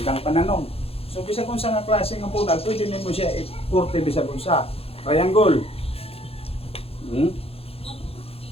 pananong. So, bisa kung sa nga klase ng bunal, pwede nimo siya i-kurte bisa kung sa triangle.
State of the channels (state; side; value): late; right; 0.28 ms